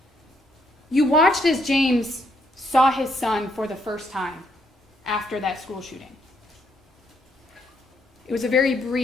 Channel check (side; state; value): both; normal; correlation 0.73